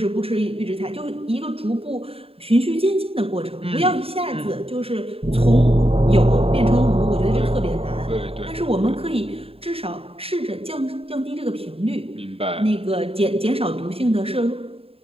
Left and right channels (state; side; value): late; left; 0.28 ms